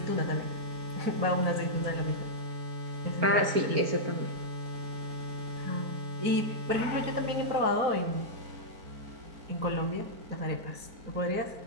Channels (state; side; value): late; left; 4.4 ms